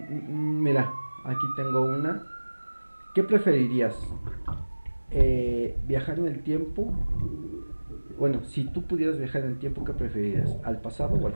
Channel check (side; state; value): both; inverted; correlation -1.00